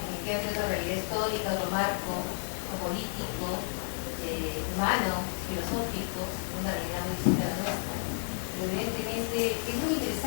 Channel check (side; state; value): right; silent; digital silence